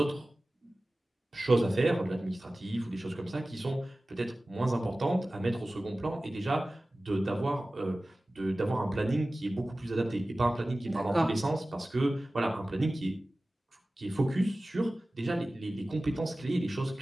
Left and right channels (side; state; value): both; normal; correlation 0.97